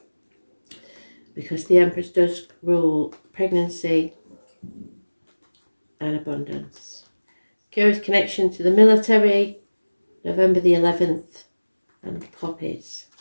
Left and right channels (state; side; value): inverted; both; correlation -1.00